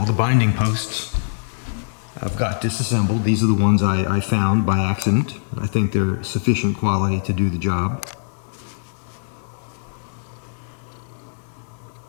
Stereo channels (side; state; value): right; silent; digital silence